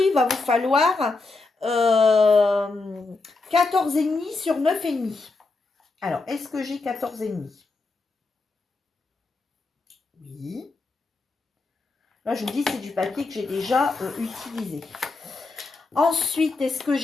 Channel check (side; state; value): right; quieter; 3.7 dB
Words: va vous falloir 14,5 sur 9,5. Alors, est-ce que j'ai 14,5? Oui. Là, je vous dis, c'est du papier que j'ai déjà utilisé. Ensuite, est-ce que